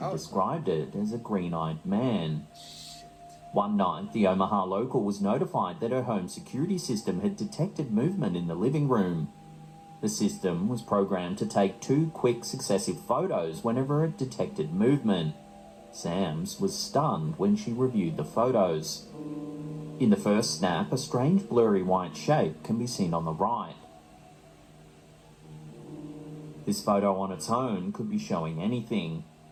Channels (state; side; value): identical; both; correlation 1.00